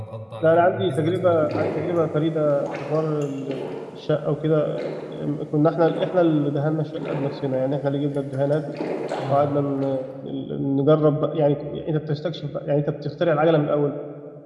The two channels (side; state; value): both; identical; correlation 1.00